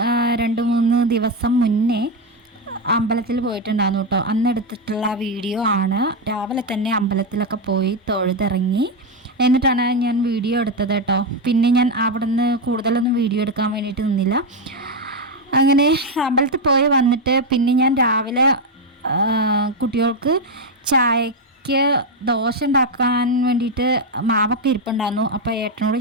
2-3 ദിവസം മുന്നേ അമ്പലത്തിൽ പോയിട്ടുണ്ടായിരുന്നു കേട്ടോ. അന്ന് എടുത്തിട്ടുള്ള വീഡിയോ ആണ്. രാവിലെ തന്നെ അമ്പലത്തിലൊക്കെ പോയി തൊഴുതിറങ്ങി എന്നിട്ടാണ് ഞാൻ വീഡിയോ എടുത്തത് കേട്ടോ. പിന്നെ ഞാൻ അവിടെ നിന്ന് കൂടുതലൊന്നും വീഡിയോ എടുക്കാൻ വേണ്ടിയിട്ട് നിന്നില്ല. അങ്ങനെ അമ്പലത്തിൽ പോയി വന്നിട്ട് പിന്നെ ഞാൻ രാവിലെ കുട്ടികൾക്ക് ചായക്ക് ദോശ ഉണ്ടാക്കാൻ വേണ്ടിയിട്ട് മാവൊക്കെ ഇരിപ്പുണ്ടായിരുന്നു. അപ്പോൾ ഏട്ടനോട്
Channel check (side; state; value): both; normal; correlation 0.06